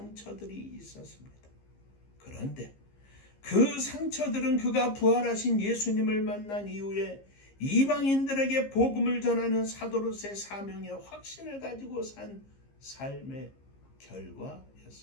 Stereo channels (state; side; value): late; right; 15 ms